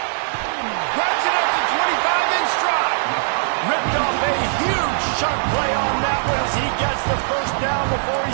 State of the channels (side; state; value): left; silent; digital silence